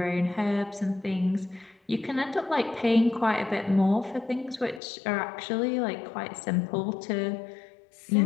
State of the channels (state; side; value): drops out; right; at 4.8 s